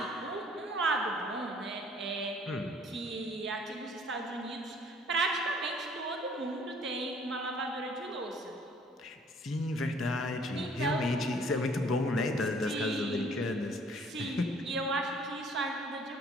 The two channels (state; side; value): normal; both; correlation 0.57